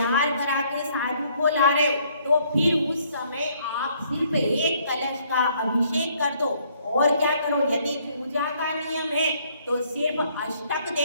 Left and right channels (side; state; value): both; inverted; correlation -0.66